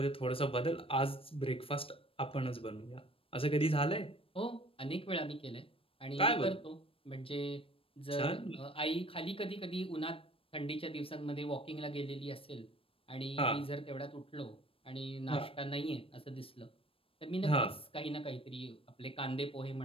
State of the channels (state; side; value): late; right; 0.27 ms